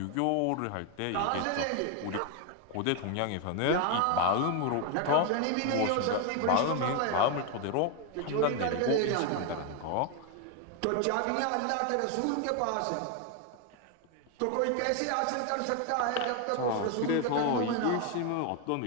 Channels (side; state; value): both; different; correlation 0.01